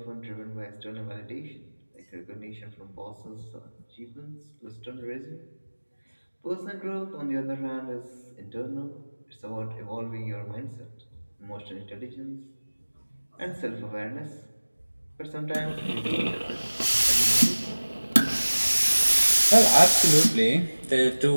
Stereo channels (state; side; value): inverted; both; correlation -1.00